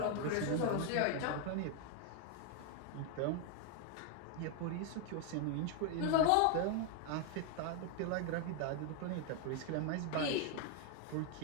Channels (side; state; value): both; different; correlation 0.00